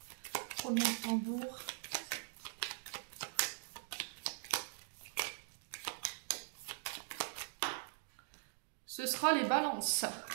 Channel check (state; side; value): silent; left; digital silence